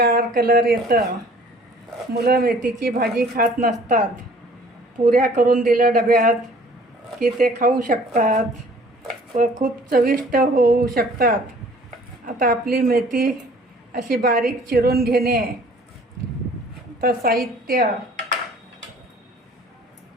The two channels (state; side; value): normal; both; correlation 0.53